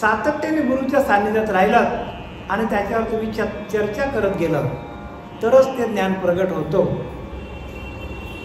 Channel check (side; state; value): both; identical; correlation 1.00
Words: गुरुच्या सान्निध्यात राहिलं आणि त्याच्यावर तुम्ही चर्चा करत गेलं तरच ते ज्ञान प्रगट होतो.